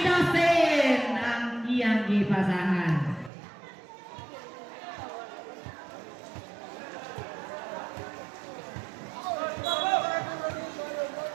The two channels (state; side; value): drops out; left; at 3.3 s